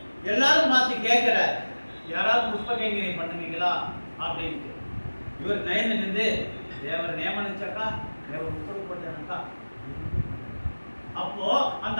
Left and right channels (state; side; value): inverted; both; correlation -1.00